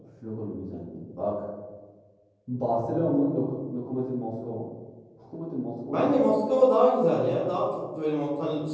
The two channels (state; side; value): identical; both; correlation 1.00